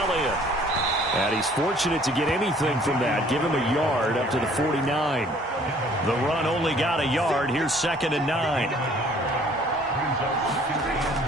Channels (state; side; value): normal; both; correlation 0.57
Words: And he's fortunate to get anything from that. Give him a yard up to the 49. The run only got a yard. Here's 2nd and 9.